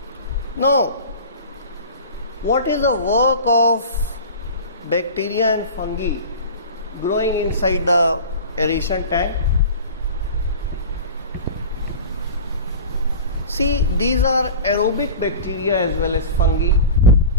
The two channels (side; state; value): both; inverted; correlation -0.36